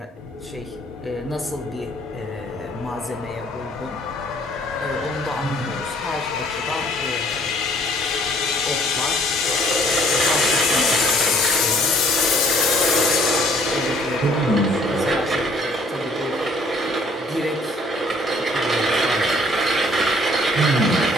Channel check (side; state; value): both; normal; correlation 0.59